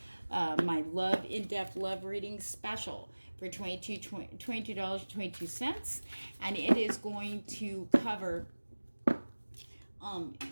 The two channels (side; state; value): both; inverted; correlation -1.00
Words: my in-depth love reading special for $22.22, and it is going to cover